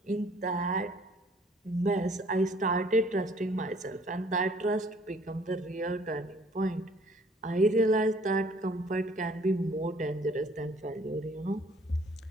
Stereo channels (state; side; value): normal; both; correlation 0.58